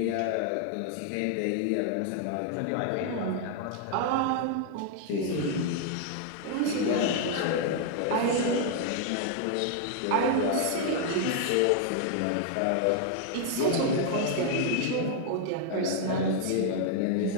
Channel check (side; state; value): both; different; correlation 0.00